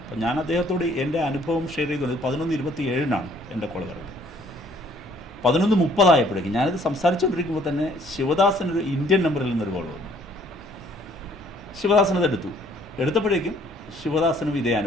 അപ്പം ഞാൻ അദ്ദേഹത്തോട് എൻ്റെ അനുഭവം ഷെയർ ചെയ്തുകൊണ്ട് 11:27 എൻ്റെ കോൾ വരുന്നത്. 11:30 ഞാനിത് സംസാരിച്ചുകൊണ്ടിരിക്കുമ്പോൾ തന്നെ ശിവദാസനൊരു ഇന്ത്യൻ നമ്പറിൽ നിന്നൊരു കോൾ വന്നു. ശിവദാസനത് എടുത്തപ്പോഴേക്കും ശിവദാസനും ഇതേ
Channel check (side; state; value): both; normal; correlation 0.60